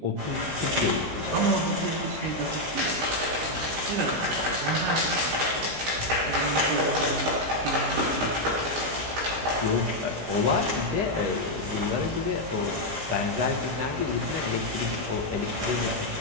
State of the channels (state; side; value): late; left; 19 ms